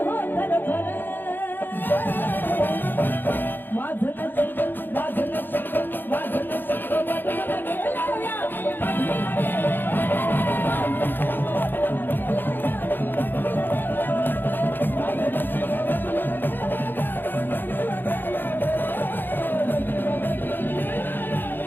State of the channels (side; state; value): right; late; 0.095 ms